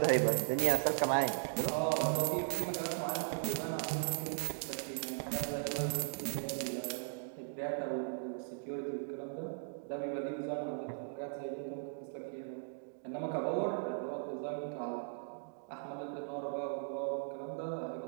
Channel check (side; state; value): left; silent; digital silence